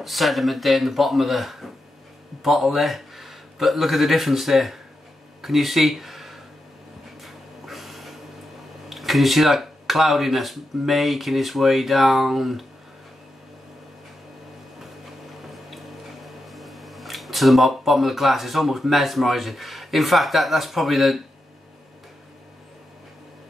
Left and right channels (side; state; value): both; normal; correlation 0.87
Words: sediment there in the bottom of the bottle there, but look at the difference there. Can you see that cloudiness making its way down to the bottom of the glass? It's almost mesmerising. In fact, that's probably the